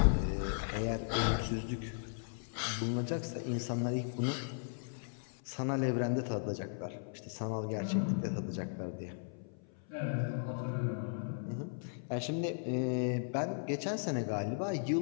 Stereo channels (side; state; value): right; silent; 53 dB below the other